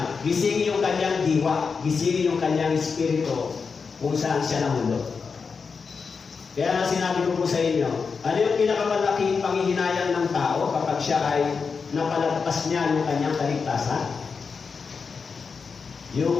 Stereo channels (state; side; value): quieter; right; 5.3 dB